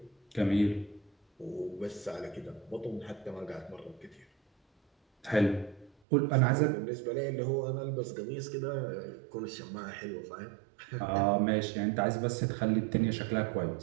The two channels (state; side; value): drops out; left; at 5.9 s